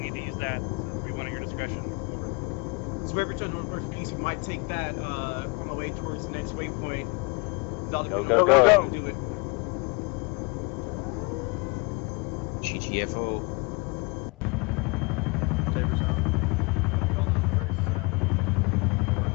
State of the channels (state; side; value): quieter; right; 29.0 dB